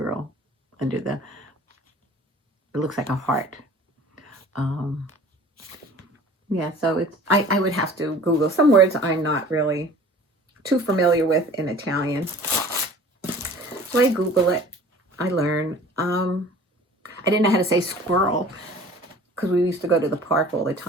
under it looks like a heart. Yeah, so I would have to Google some words I'm not really too familiar with in Italian. So I Google it. I learn. I didn't know how to say squirrel, because we used to go to the park all the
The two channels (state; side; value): normal; both; correlation 0.46